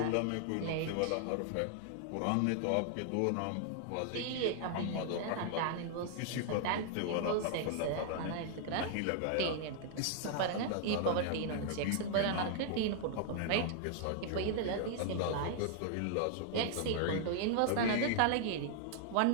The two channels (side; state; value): both; different; correlation -0.01